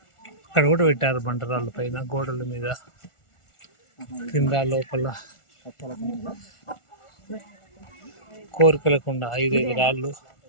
అక్కడ కూడా పెట్టారు బండరాళ్ళ పైన, గోడల మీద, కింద, లోపల. కోరికలకుండా 5 రాళ్ళు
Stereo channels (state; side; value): late; right; 1.4 ms